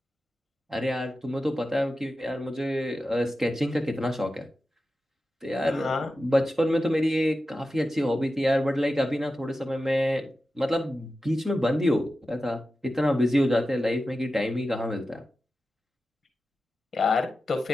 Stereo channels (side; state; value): both; normal; correlation 0.93